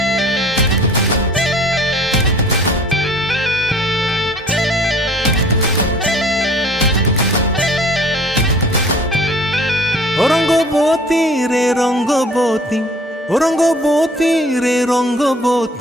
ও রঙ্গবতী রে রঙ্গবতী, ও রঙ্গবতী রে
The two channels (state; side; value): normal; both; correlation 0.51